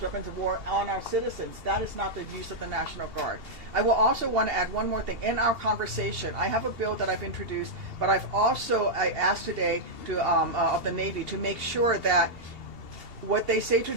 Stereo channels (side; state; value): left; late; 2.8 ms